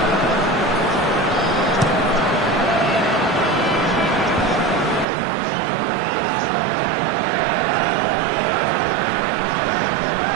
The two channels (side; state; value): left; drops out; at 5.1 s